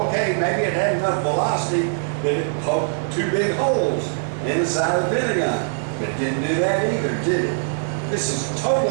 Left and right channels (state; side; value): silent; left; digital silence